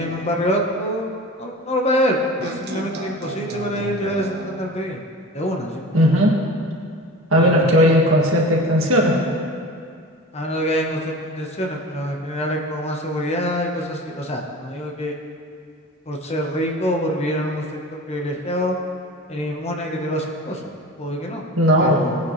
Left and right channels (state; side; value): normal; both; correlation 0.36